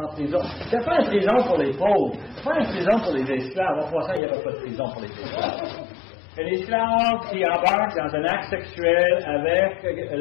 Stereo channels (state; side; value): drops out; right; at 4.2 s